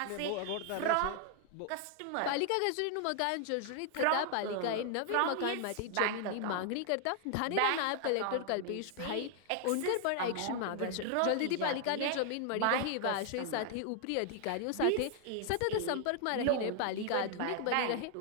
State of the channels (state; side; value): different; both; correlation 0.00